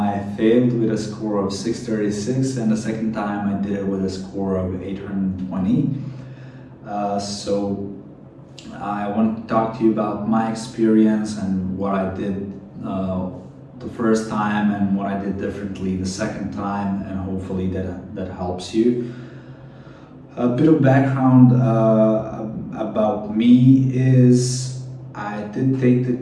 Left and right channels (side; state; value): both; identical; correlation 1.00